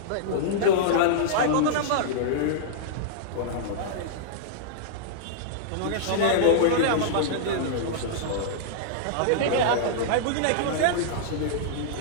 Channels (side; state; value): both; different; correlation -0.02